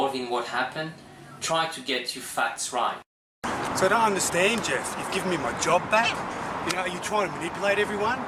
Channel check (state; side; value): identical; both; correlation 1.00